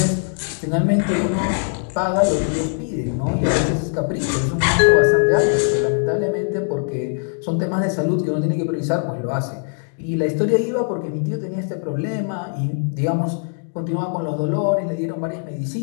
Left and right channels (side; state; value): right; silent; 64 dB below the other